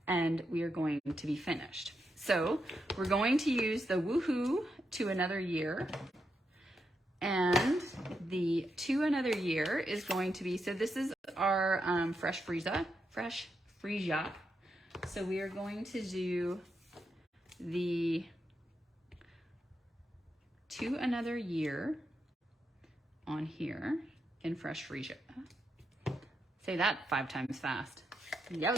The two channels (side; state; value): both; normal; correlation 0.84